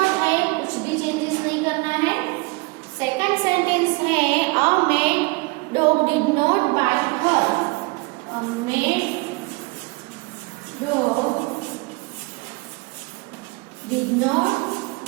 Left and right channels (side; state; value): left; quieter; 26.4 dB